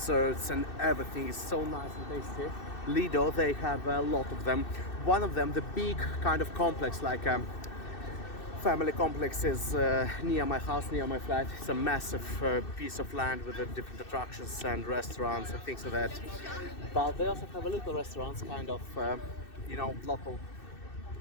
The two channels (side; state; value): right; late; 2.6 ms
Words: and everything is so nice and tasty. Lido, they have a lot of them. One of them, the big kind of complex, like family complex, is near my house, near my flat. It's a massive piece of land with different attractions and restaurants and things like that. But they also have a little restaurants, kind of, you know, local,